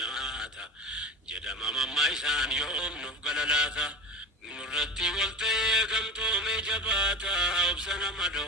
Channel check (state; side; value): normal; both; correlation 0.30